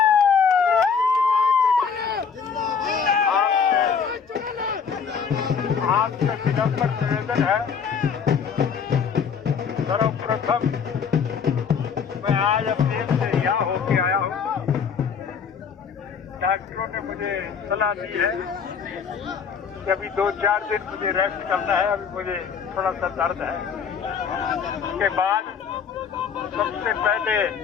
आपसे विनम्र निवेदन है, सर्वप्रथम मैं आज अपने से यहाँ होके आया हूँ। डॉक्टरों ने मुझे सलाह दी है कि अभी 2-4 दिन मुझे रेस्ट करना है, अभी मुझे थोड़ा सा दर्द है। उसके बाद सबसे पहले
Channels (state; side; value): quieter; right; 6.5 dB